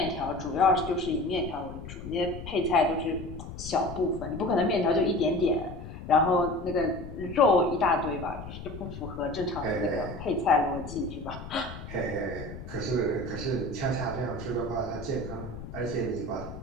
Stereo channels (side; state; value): left; noise; rumble, 11 dB below the sound